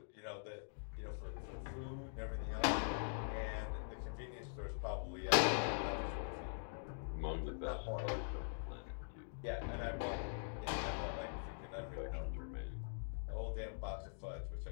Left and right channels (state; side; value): silent; right; digital silence